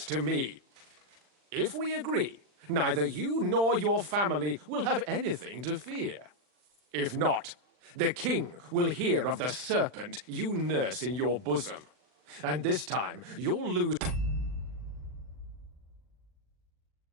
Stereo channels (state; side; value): late; left; 40 ms